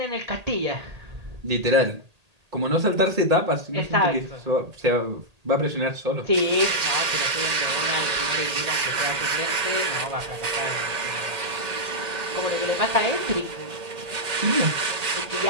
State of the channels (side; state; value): left; late; 1.8 ms